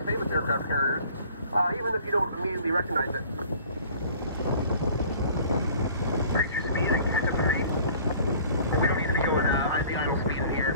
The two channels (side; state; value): both; inverted; correlation -0.50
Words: famous aircraft carriers, even if you don't immediately recognize it. Reach your speed and catch up to me. We don't need to be going the idle speed in